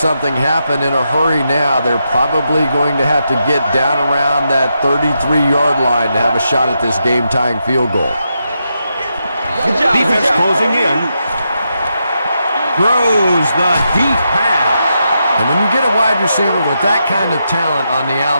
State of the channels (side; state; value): both; inverted; correlation -0.84